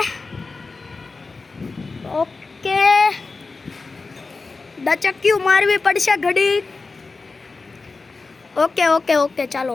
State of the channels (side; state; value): right; quieter; 4.0 dB